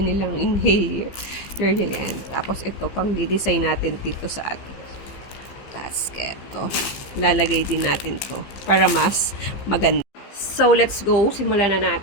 nilang inhale. Yan. Tapos, ito, pang di-design natin dito sa atin. Basket. To. Lalagay din natin to para mas maganda. So, let's go. Simulan na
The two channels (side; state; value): right; late; 15 ms